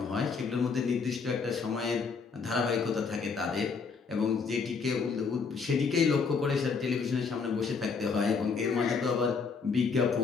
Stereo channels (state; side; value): quieter; right; 5.2 dB